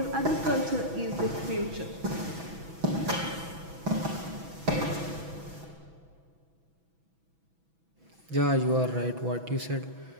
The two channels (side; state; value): left; late; 6.1 ms